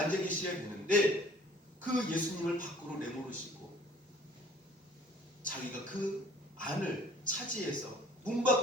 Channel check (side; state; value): both; normal; correlation 0.53